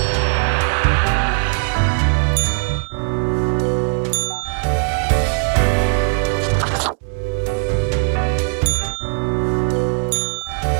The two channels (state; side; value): silent; left; digital silence